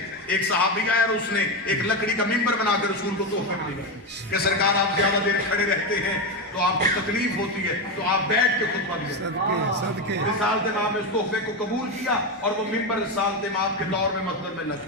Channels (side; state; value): both; normal; correlation 0.12